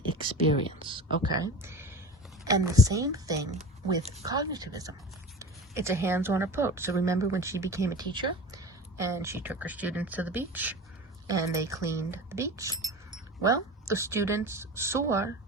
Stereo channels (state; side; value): normal; both; correlation 0.34